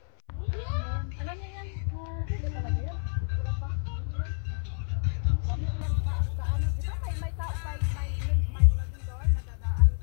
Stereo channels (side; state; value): right; silent; 58 dB below the other